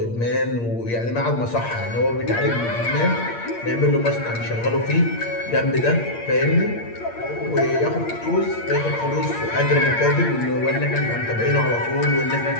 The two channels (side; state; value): right; late; 8.6 ms